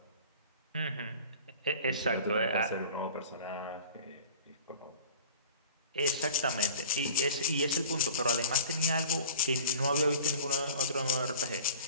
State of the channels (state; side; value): inverted; both; correlation -0.42